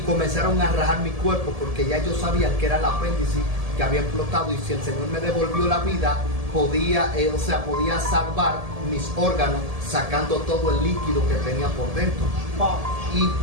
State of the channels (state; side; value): late; left; 1.7 ms